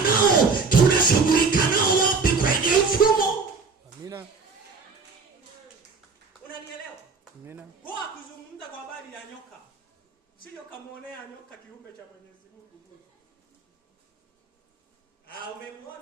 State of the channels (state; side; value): quieter; left; 4.6 dB